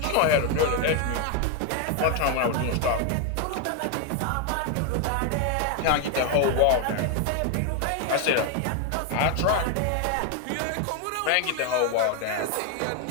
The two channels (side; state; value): both; different; correlation 0.01